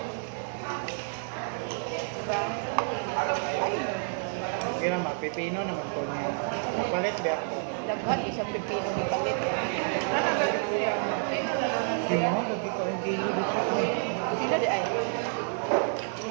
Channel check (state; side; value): silent; left; 57 dB below the other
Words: Diba? Ay, Kaya mapipino naman po niya. Napalit ba ako? daghan isang pipino ni palit. Nanagalit siya. Ayun na lang. Si Mahal, lagi ka ang kilo dito. Ay. Sila di ay.